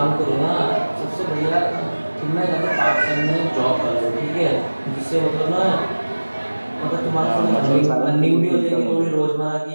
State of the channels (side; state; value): both; inverted; correlation -1.00